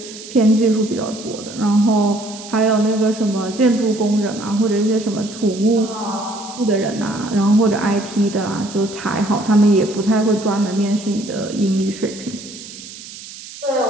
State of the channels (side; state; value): right; noise; hiss, 15 dB below the sound